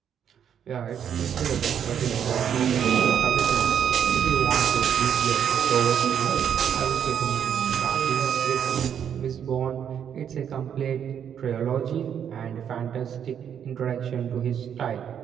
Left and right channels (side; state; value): left; quieter; 8.6 dB